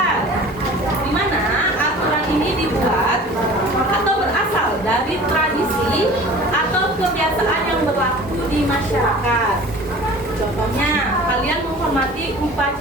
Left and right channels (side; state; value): both; normal; correlation 0.43